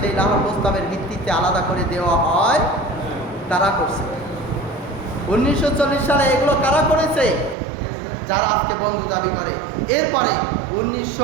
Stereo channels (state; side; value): drops out; left; at 7.6 s